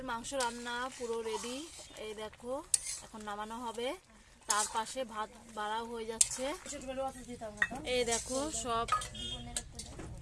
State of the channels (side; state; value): both; identical; correlation 1.00